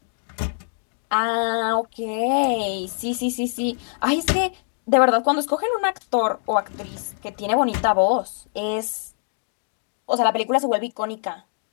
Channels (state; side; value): silent; right; digital silence